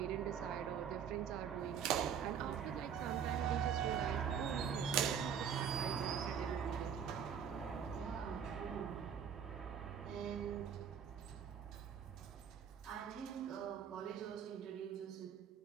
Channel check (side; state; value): left; quieter; 7.8 dB